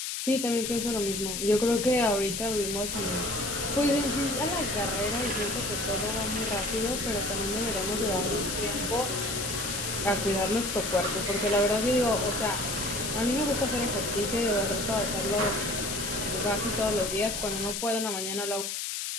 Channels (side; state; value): left; noise; hiss, 3 dB below the sound